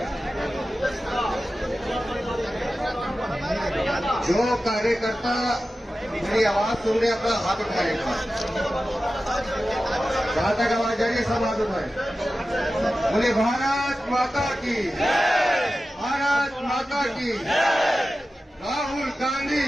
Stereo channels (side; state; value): both; normal; correlation 0.94